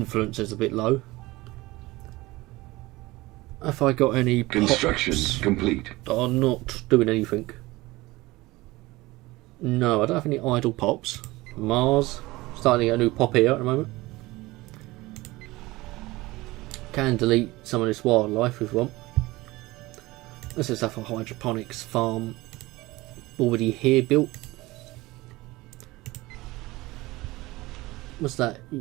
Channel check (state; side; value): quieter; left; 20.2 dB